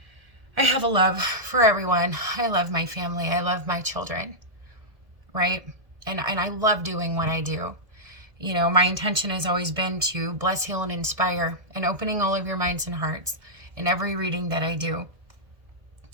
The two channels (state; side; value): late; left; 1.7 ms